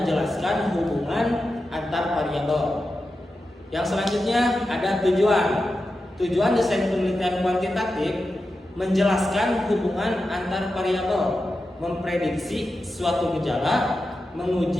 hubungan antar variabel. Yang selanjutnya ada tujuan. Tujuan desain penelitian kuantitatif menjelaskan hubungan antar variabel, memprediksi suatu gejala,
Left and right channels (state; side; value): normal; both; correlation 0.91